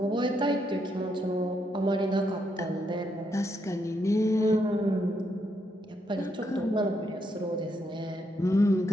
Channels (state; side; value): normal; both; correlation 0.78